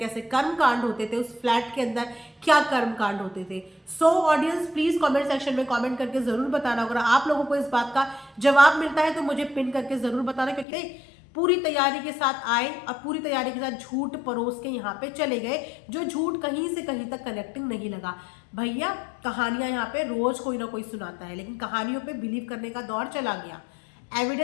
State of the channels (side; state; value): right; drops out; at 10.7 s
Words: कर्म कांड होते थे, उस फ्लैट के अंदर क्या कर्म कांड होते थे। So audience please comment section में कमेंट करके जरूर बताना। अगर आप लोगों को इस बात का जवाब मिलता है तो मुझे पिन करके जरूर बताना, क्योंकि पूरी तैयारी के साथ आए और पूरी तैयारी के साथ झूठ परोस के यहाँ पे चले गए, जो झूठ कहीं से कहीं तक कनेक्टिंग नहीं लगा। भैया कहानियां यहाँ पे रोज कोई ना कोई सुनाता है, लेकिन कहानियों पे बिलीव करने का दौर चला गया।